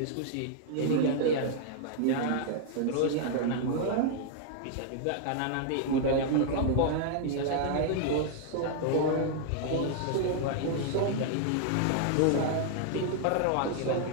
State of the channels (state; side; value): different; both; correlation -0.01